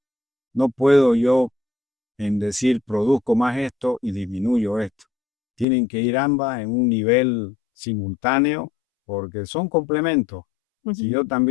No puedo yo en decir produzco más esto y disminuyo esto. Tienen que ir ambas en un nivel simultáneo porque son complementos. Si Ujú. yo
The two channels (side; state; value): right; drops out; at 5.7 s